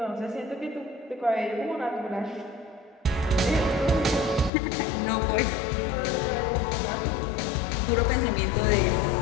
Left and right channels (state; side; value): drops out; right; at 4.5 s